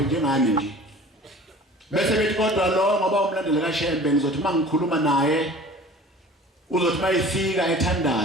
njengani nje. Bese bethi kodwa lo ngoba umlandeli kaShembe ngizothi mangikhuluma naye uzothi mayifika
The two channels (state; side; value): normal; both; correlation 0.44